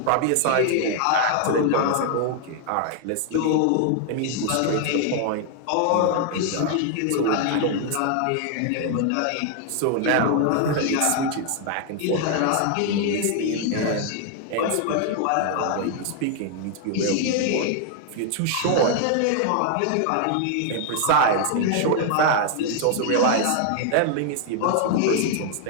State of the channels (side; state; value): both; different; correlation 0.00